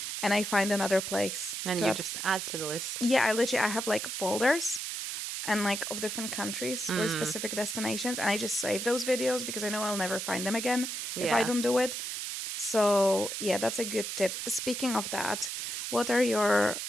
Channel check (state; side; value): noise; right; hiss, 4 dB below the sound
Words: and I find another place And you to just add to the list. yeah, I have like folders and like of different countries or specific destinations and I just save those videos because I know I'll never find them again if I Yeah. don't do it. So yeah, that's a good tip. Speaking of that, what are your